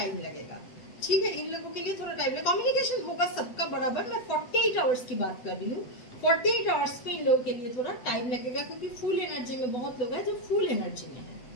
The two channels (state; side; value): late; right; 8.0 ms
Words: लगेगा, ठीक है। इन लोगों के लिए थोड़ा टाइम लगेगा, कम्युनिकेशन होगा सबका बराबर। मैं 48 आवर्स की बात कर रही हूँ, 48 आवर्स में इन लोगों के लिए थोड़ा टाइम लगेगा, क्योंकि फुल एनर्जी में बहुत लोग हैं जो फुल एनर्जी में है।